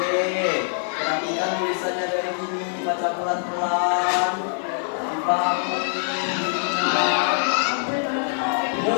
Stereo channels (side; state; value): right; silent; 63 dB below the other